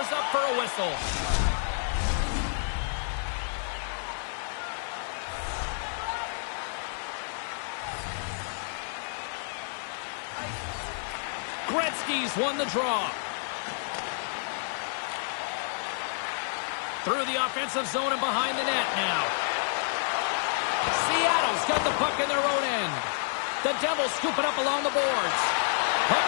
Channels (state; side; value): silent; right; 58 dB below the other